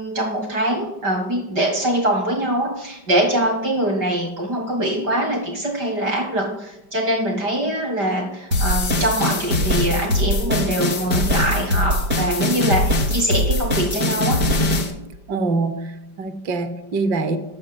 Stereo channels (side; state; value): left; late; 5.1 ms